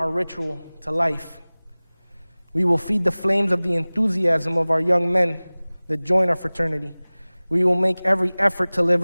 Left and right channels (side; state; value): both; inverted; correlation -1.00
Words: ritual to life. We will feed the flames of the enthusiasm of our young men that join our fraternity. We will make every effort to live